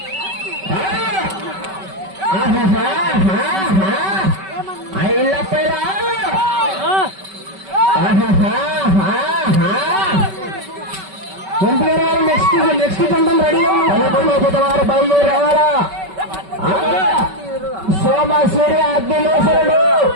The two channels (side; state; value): left; late; 5.2 ms